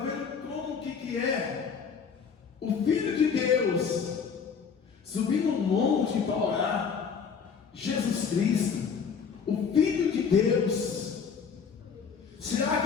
como que é o Filho de Deus subir no monte para orar? Jesus Cristo, o Filho de Deus. Será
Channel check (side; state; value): right; quieter; 6.3 dB